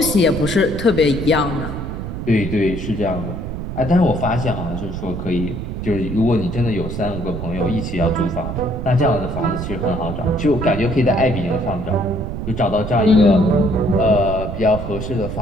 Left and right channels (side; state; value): right; noise; rumble, 6 dB below the sound